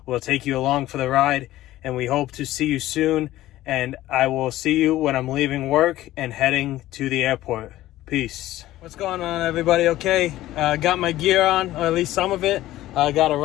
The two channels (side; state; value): right; quieter; 15.2 dB